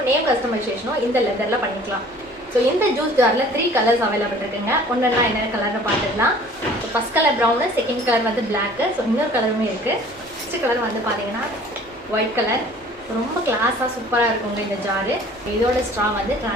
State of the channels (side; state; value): both; normal; correlation 0.50